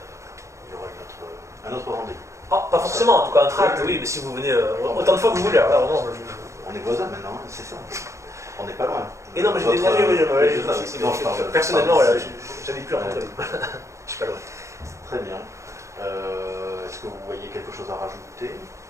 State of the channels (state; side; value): late; left; 0.14 ms